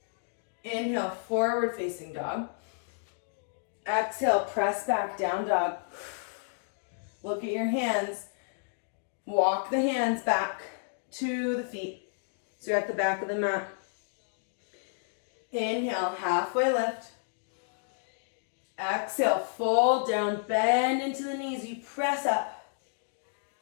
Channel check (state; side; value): silent; right; digital silence